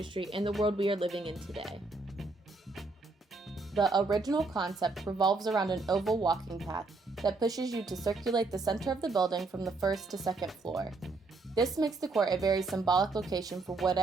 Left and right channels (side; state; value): left; quieter; 3.6 dB